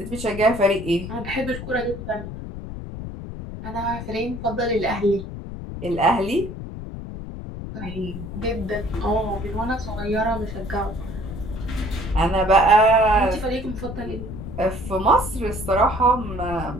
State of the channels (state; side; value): noise; left; rumble, 9 dB below the sound